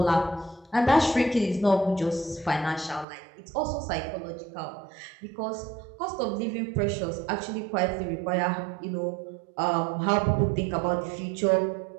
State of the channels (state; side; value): drops out; left; at 3.1 s